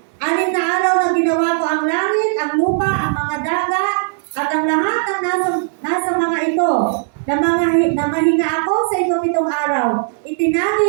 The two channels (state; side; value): silent; left; digital silence